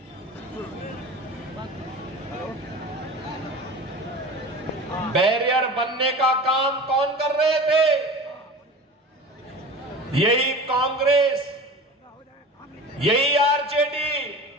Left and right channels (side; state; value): both; normal; correlation 0.35